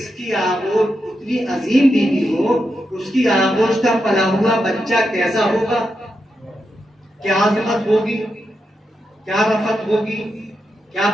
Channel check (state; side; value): normal; both; correlation 0.86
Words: کی آغوش اتنی عظیم بیوی ہو، اس کی آغوش کا پلا ہوا بچہ کیسا ہوگا، کیا عظمت ہوگی، کیا رفعت ہوگی، کیا